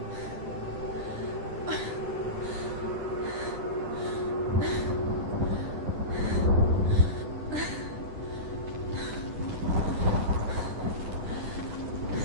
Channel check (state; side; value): late; left; 10 ms